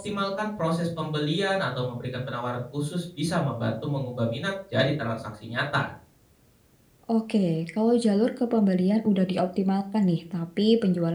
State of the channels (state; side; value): identical; both; correlation 1.00